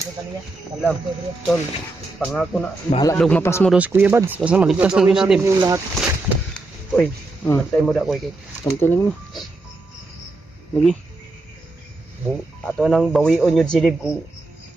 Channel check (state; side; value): quieter; left; 3.1 dB